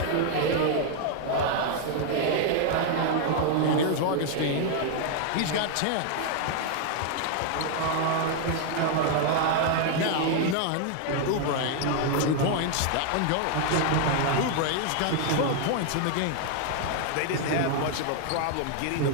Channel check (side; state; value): both; different; correlation 0.00